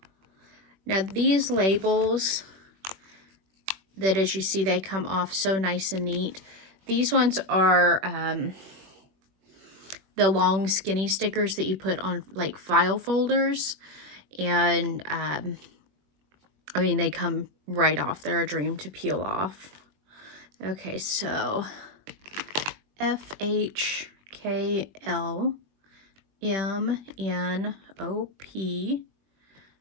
Now these labels, that as you see, they come off so nice and neat. These ones are the long skinny stickers that you put on like file folders. And I mean, they come right off. They're a dream to peel off. Okay, so FHKLMNOP.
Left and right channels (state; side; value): late; left; 21 ms